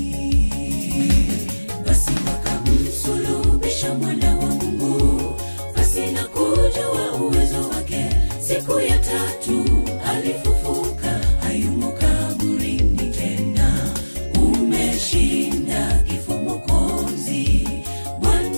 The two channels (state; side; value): inverted; both; correlation -1.00